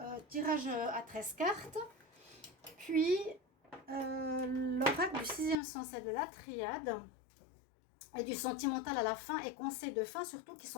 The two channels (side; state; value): right; drops out; at 5.6 s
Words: tirage à 13 cartes. Puis l'oracle du sixième sens et de la triade. Et du sentimental à la fin et conseils de fin surtout qui